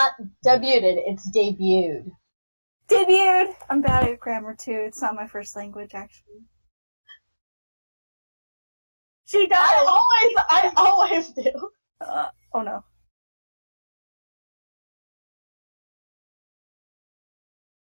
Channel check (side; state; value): both; inverted; correlation -1.00